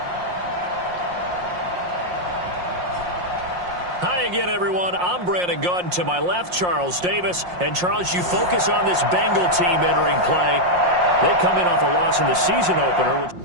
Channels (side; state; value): left; late; 5.6 ms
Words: Hi again, everyone. I'm Brandon Gautin. To my left, Charles Davis. And, Charles, you focus on this Bengal team entering play. They come in off a loss in the season opener.